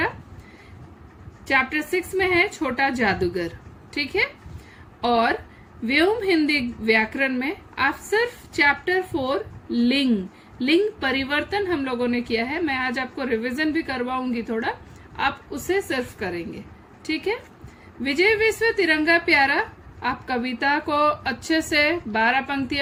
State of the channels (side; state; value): both; identical; correlation 1.00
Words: चैप्टर 6 में है छोटा जादूगर। ठीक है, और व्योम हिंदी व्याकरण में आप सिर्फ चैप्टर 4 लिंग परिवर्तन हम लोगों ने किया है। मैं आज आपको रिवीजन भी करवाऊंगी थोड़ा, आप उसे सिर्फ करेंगे। ठीक है, विजय विश्व तिरंगा प्यारा आप कविता को अच्छे से 12